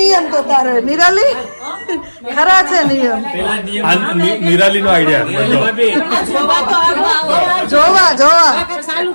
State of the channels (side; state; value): both; inverted; correlation -1.00